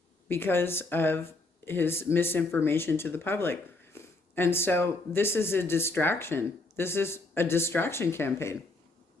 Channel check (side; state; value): right; quieter; 3.1 dB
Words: because of his misinformation to the public. And so this is a distraction. This is a distraction campaign.